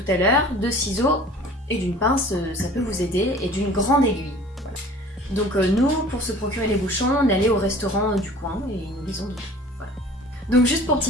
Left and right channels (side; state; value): both; normal; correlation 0.46